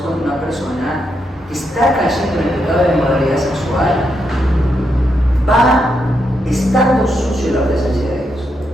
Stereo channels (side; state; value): both; normal; correlation 0.81